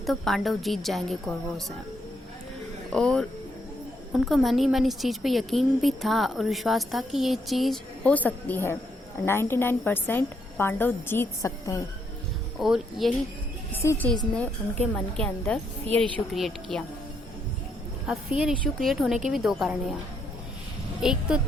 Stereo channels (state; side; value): normal; both; correlation 0.75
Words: पांडव जीत जाएंगे कौरवों से, और उनको मन ही मन इस चीज़ पे यकीन भी था और विश्वास था कि ये चीज़ हो सकती है। 99% पांडव जीत सकते हैं और यही इसी चीज़ ने उनके मन के अंदर फियर इशू क्रिएट किया। अब फियर इशू क्रिएट होने के भी दो कारण हैं यहाँ। एक तो